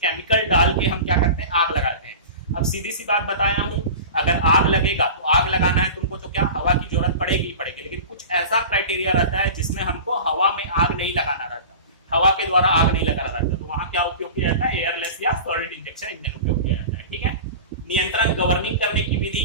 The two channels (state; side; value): inverted; both; correlation -0.34